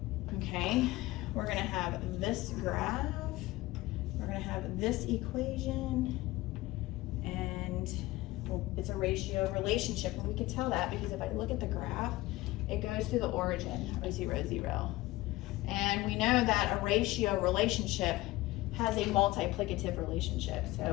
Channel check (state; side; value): quieter; right; 18.7 dB